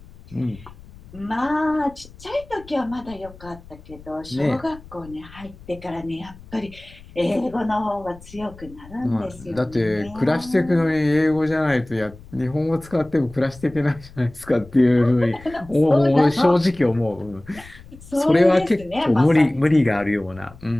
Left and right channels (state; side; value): noise; left; rumble, 20 dB below the sound